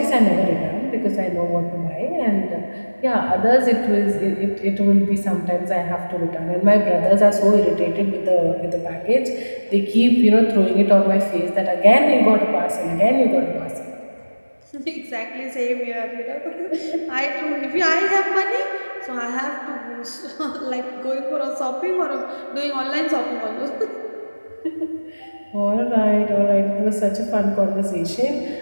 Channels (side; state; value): both; inverted; correlation -1.00